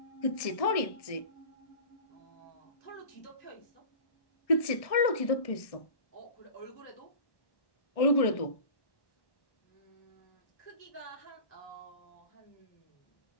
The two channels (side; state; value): right; late; 1.6 ms